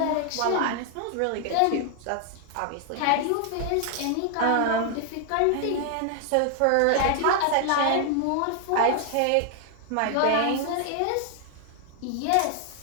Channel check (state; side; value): different; both; correlation 0.00